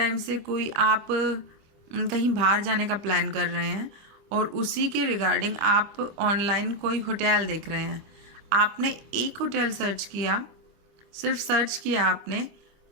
से कोई आप कहीं बाहर जाने का प्लान कर रहे हैं और उसी के रिगार्डिंग आप ऑनलाइन कोई होटल देख रहे हैं। आपने एक होटल सर्च किया, सिर्फ सर्च किया आपने,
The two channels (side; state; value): left; late; 25 ms